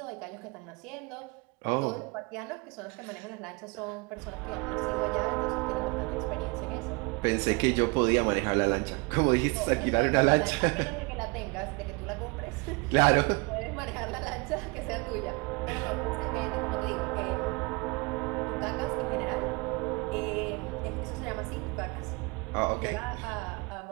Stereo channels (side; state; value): left; quieter; 29.0 dB